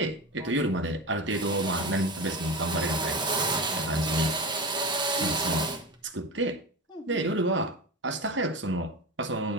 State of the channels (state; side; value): normal; both; correlation 0.24